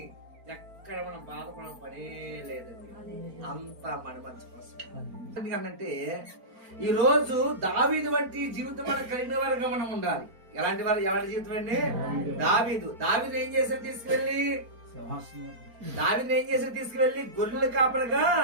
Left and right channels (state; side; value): late; left; 4.4 ms